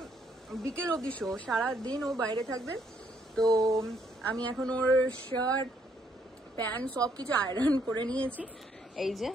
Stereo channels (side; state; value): both; normal; correlation 0.70